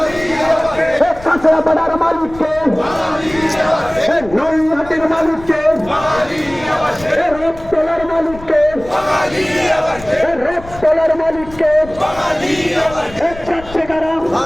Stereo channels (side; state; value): left; noise; rumble, 17 dB below the sound